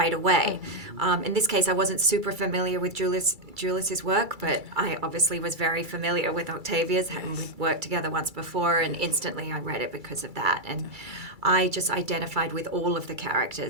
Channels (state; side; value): late; left; 2.3 ms